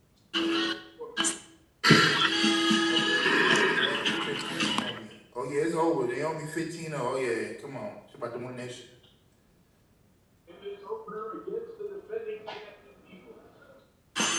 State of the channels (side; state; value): both; identical; correlation 1.00